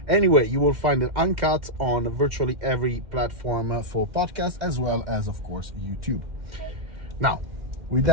Anyway, you will find it uncut on virtually every platform for podcasts, as well as, of course, YouTube. Okay. Now, with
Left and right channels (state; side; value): late; left; 2.1 ms